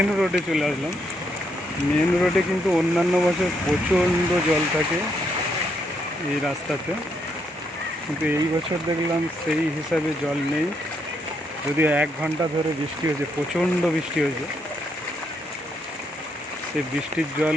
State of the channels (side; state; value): both; normal; correlation 0.76